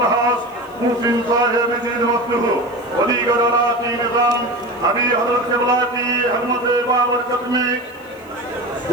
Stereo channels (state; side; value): noise; left; hiss, 29 dB below the sound